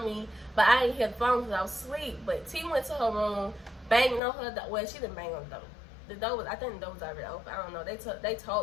me, but I didn't hear the phone because I was asleep. But T went to her room, banging on her door. Well, she didn't bang on the door. The door was, I think the door was already open. I don't know. They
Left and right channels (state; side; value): drops out; right; at 4.2 s